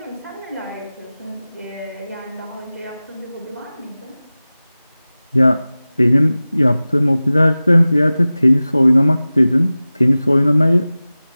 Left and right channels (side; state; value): both; inverted; correlation -0.97